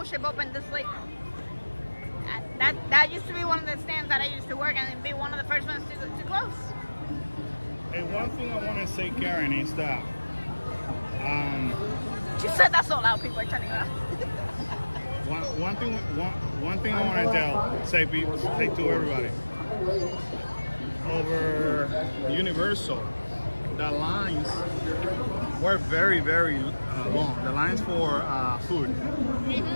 Ship open this late. That used to be one of the stands that I used to work in and be one of the first ones to close. Hey, one thing I want to say, Karen, is that She said that so loud, people are turning around. one thing I want to say to everybody. Over Universal, the lines were very, very long. The lines for food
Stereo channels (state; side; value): inverted; both; correlation -1.00